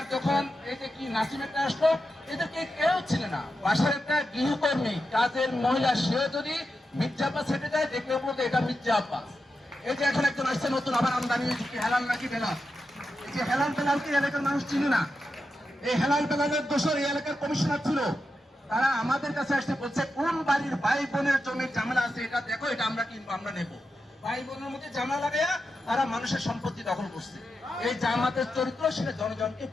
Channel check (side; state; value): both; normal; correlation 0.88